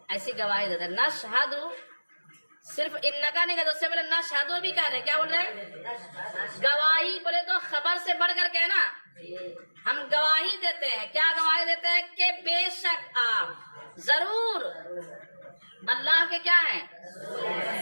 ایسی گواہی دیتے ہیں. نشہد صرف انکا نہیں کہتے، اس سے پہلے نشہدو بھی کہہ رہے ہیں. کیا بول رہے ہیں؟ گواہی بولے تو خبر سے بڑھ کر کے نا ہم گواہی دیتے ہیں. کیا گواہی دیتے ہیں؟ کہ بے شک آپ ضرور اللہ کے کیا ہیں؟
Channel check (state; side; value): inverted; both; correlation -1.00